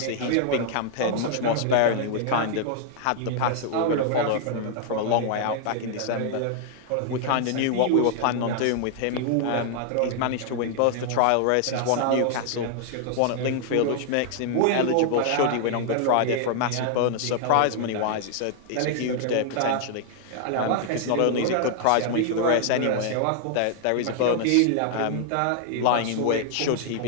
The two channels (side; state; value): both; different; correlation 0.00